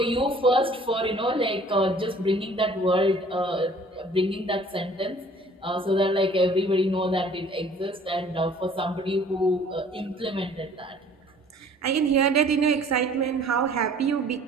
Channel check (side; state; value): both; normal; correlation 0.53